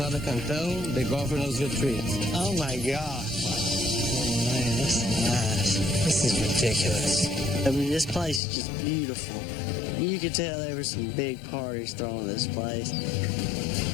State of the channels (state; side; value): drops out; right; at 8.4 s